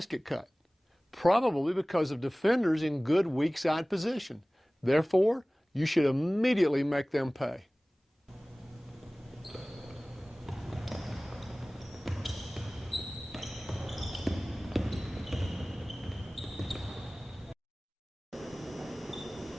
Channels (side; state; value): both; normal; correlation 0.98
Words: cut? Probably because of defenders in good weak side position. Therefore, you should immediately make them pay.